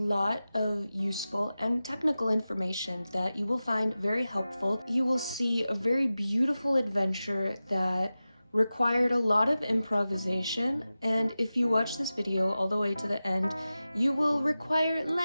of useful and technical information that you will find very helpful. You will see a very beautiful adventure that required a lot of improvisation, and if you watch this video all the way to the end, you will require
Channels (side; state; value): both; inverted; correlation -0.95